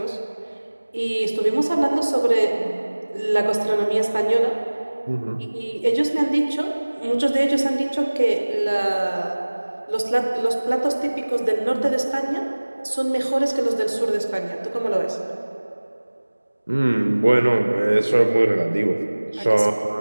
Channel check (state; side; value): inverted; both; correlation -1.00